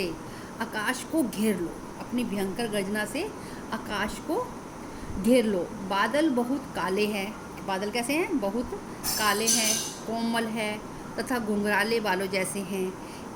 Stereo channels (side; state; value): both; identical; correlation 1.00